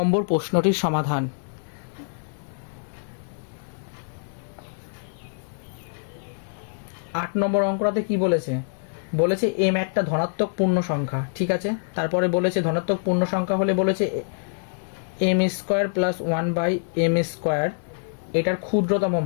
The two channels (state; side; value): silent; right; digital silence